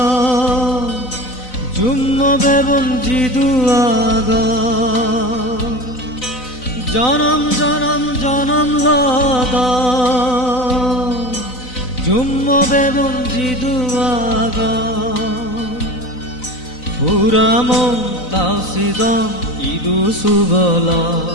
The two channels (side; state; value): right; late; 4.0 ms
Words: জুম্ম বেবন জিদুয়াগ জনম জনম জনম লদ জুম্ম বেবন জিদুয়াগ পুরামম তাওসিদম ইদু সুবলা